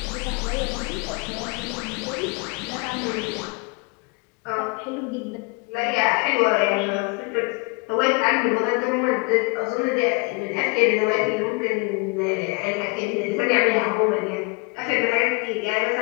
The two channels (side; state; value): right; quieter; 29.4 dB